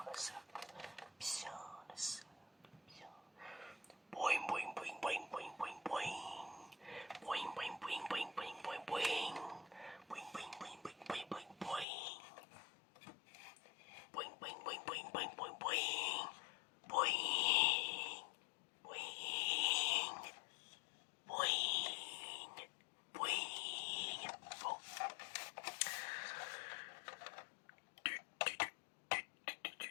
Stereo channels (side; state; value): right; drops out; at 11.9 s